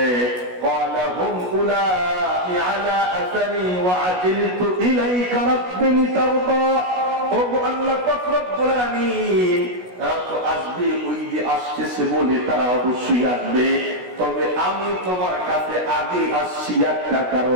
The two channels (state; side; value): late; left; 16 ms